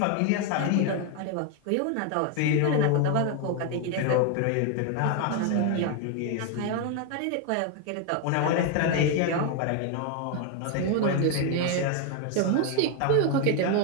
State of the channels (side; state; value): both; different; correlation 0.01